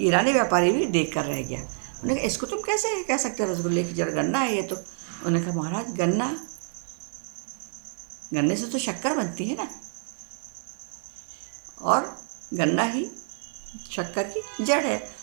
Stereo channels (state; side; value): silent; left; 60 dB below the other